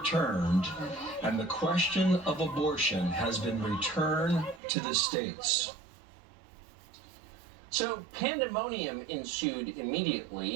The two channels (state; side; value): drops out; left; at 4.6 s